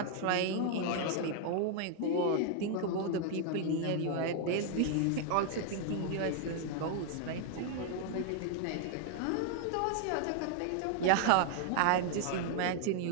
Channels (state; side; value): different; both; correlation 0.00